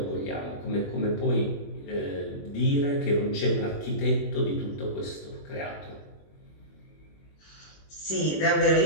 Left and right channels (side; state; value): right; late; 21 ms